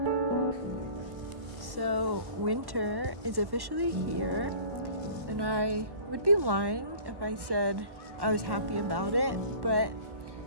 So winter is officially here, and I would be lying if I said I was happy about it, but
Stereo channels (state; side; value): late; left; 1.1 ms